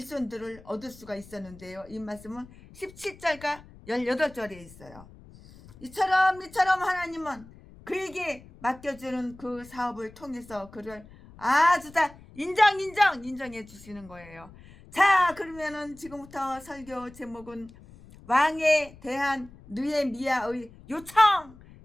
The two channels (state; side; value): noise; left; rumble, 21 dB below the sound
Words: 얻을 수가 있었는데요. 이 말씀은 17절과 18절에 있어요. 이처럼 하나님은 그에게 맡겨주는 그 사업을 통해서 그를 아주 다 인정해 주시는 거예요. 자, 그러면은 지금부터 설교 제목은 왕에 대한 느헤미야의 요청.